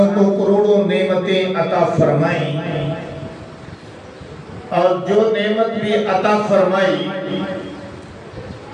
کو کروڑوں نعمتیں عطا فرمائیں، اور جو نعمت بھی عطا فرمائی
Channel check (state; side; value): identical; both; correlation 1.00